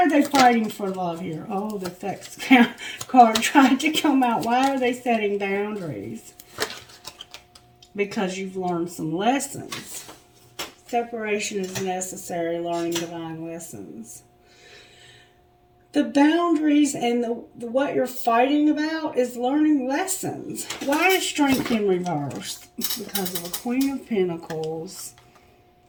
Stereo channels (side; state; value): both; identical; correlation 1.00